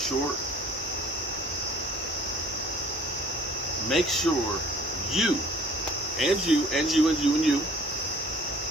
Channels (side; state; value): both; normal; correlation 0.52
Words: Make sure you